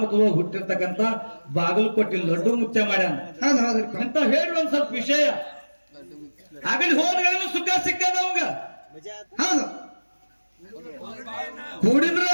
ಮತ್ತು ಹುಟ್ಟಿರ್ತಕ್ಕಂಥ ಬಾಗಲಕೋಟೆ ಲಡ್ಡು ಮುಚ್ಚ ಮಾಡ್ಯಾನ ಹೌದು. ಹೌದ್ರಿಪ್ಪ. ಅಂತ ಹೇಳಿ ಒಂದ್ ಸ್ವಲ್ಪ ವಿಷಯ. ಆಗಲಿ ಹೋದ್ಗಳನ್ನು ಸುಖ ಸಿಕ್ಕದ ಅವಾಗ. ಹೌದು. ಕೂಡಿದ್ರೆ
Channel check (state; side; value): inverted; both; correlation -1.00